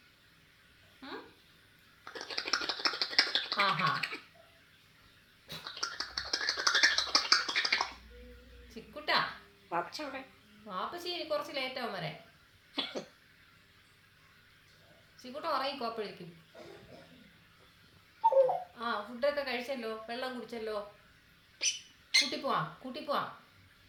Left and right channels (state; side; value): identical; both; correlation 1.00